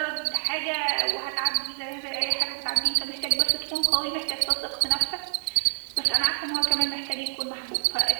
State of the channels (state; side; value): silent; left; digital silence